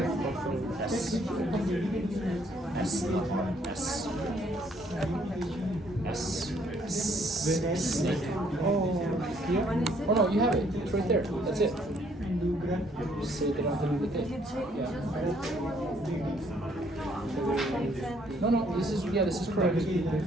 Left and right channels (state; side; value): normal; both; correlation 0.66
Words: Snake. Oh, here? Oh no, you have it. It's right there. That's it. And do grab. Just say they don't have to do the thing. Yeah. No, this is correct.